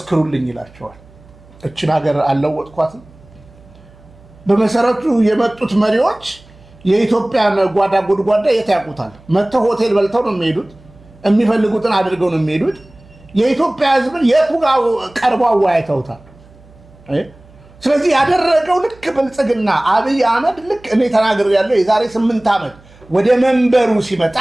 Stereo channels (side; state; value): right; noise; hum, 25 dB below the sound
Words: ይላቸዋል። እችን ሀገር አልለወጥኳትም። በመሰረቱ የመጡት መሪዎች የኢትዮጵያን ጓዳ ጉድጓዳ የት ያውቁታል? መጥተው ሆቴል በልተው ነው የሚሄዱት፣ የሚፈልጉትን አድርገው ነው የሚሄዱት። የኢትዮጵያ ሕዝብን የቱ ጋር ቀርበው አወያይተውታል? ስለዚህ ያደረገው ልክ ብልጽግና አብይ አህመድ ልክ እኔ ተናግሬያለሁ የዛሬ 8 ዓመት ወደ መንበሩ ሲመጣ